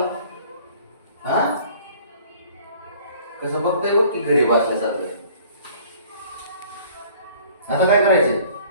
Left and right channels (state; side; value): inverted; both; correlation -0.53